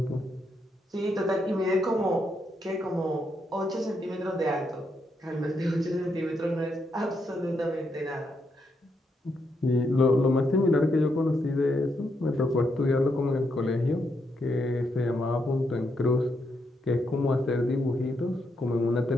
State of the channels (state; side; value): normal; both; correlation 0.80